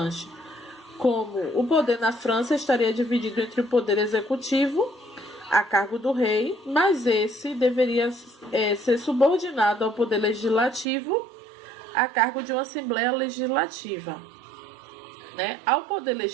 como o poder na França estaria dividido entre o poder executivo, a cargo do rei, mas esse deveria ser subordinado ao poder legislativo, a cargo de uma Assembleia Legislativa. Né? Ao poder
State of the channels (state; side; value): drops out; left; at 10.9 s